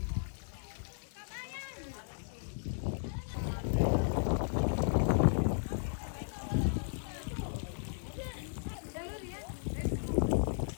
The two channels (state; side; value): silent; right; 54 dB below the other